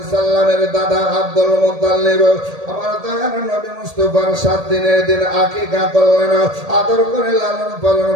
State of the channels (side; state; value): left; late; 1.8 ms